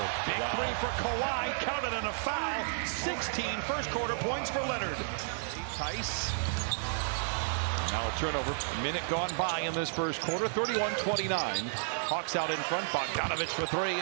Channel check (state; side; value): silent; left; digital silence